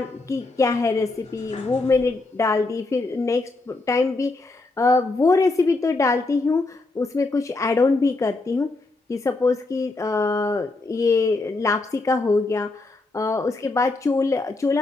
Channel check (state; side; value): quieter; right; 3.3 dB